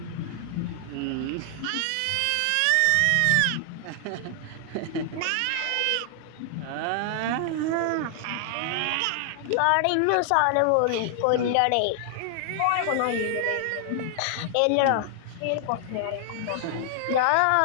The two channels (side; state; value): both; different; correlation 0.00